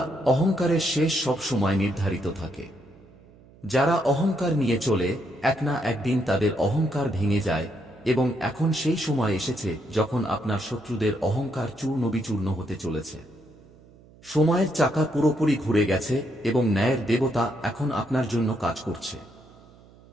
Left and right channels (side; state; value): right; noise; hum, 25 dB below the sound